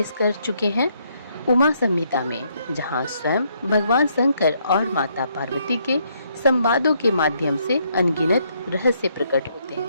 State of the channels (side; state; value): both; inverted; correlation -0.72